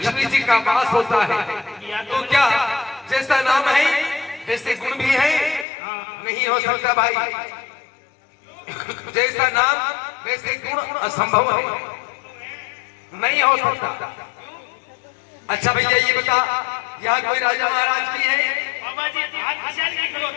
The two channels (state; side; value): drops out; right; at 5.7 s